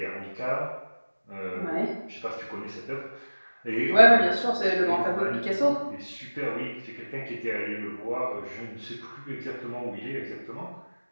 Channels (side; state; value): both; inverted; correlation -1.00